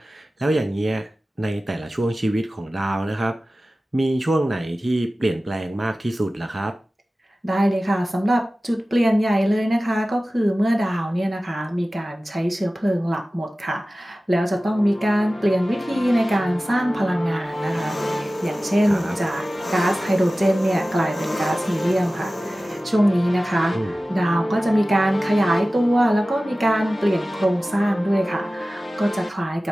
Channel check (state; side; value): normal; both; correlation 0.96